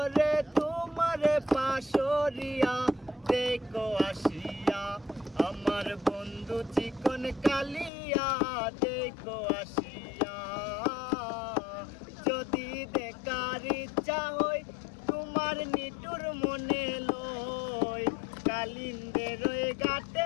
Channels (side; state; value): right; drops out; at 7.9 s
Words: তোমারে পাশরিয়া দেখো আসিয়া। আমার বন্ধু চিকন কালিয়া দেখো আসিয়া। যদি দেখার ইচ্ছা হয় তোমার নিটুর মনে লয়, কালিন্দের ওই